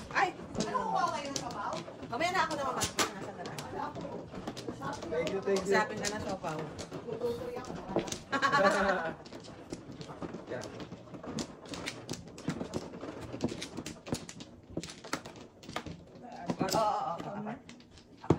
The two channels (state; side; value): identical; both; correlation 1.00